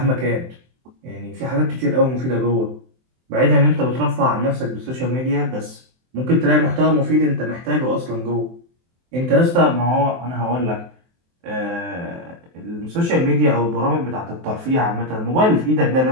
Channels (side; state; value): left; late; 23 ms